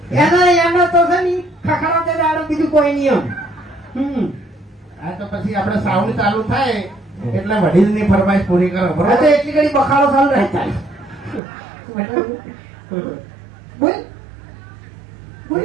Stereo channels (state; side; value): drops out; left; at 11.4 s